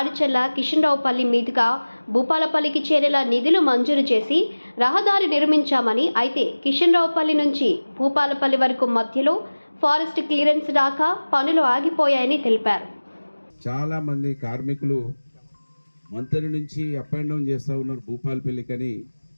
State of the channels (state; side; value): inverted; both; correlation -1.00